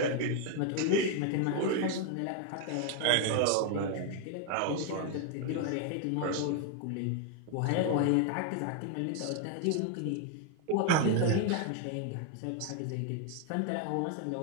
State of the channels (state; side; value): different; both; correlation 0.00